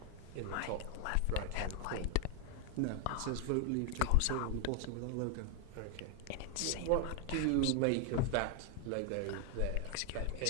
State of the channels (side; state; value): both; different; correlation 0.01